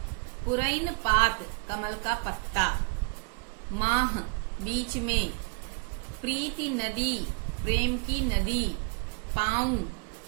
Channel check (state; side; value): quieter; left; 34.8 dB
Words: पुरैन पात कमल का पत्ता, माह बीच में, प्रीति नदी प्रेम की नदी, पाँव